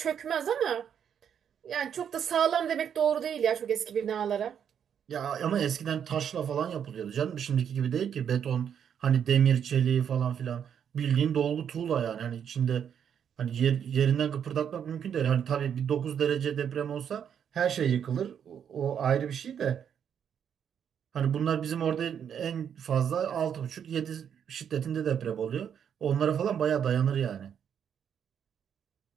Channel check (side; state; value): left; quieter; 8.3 dB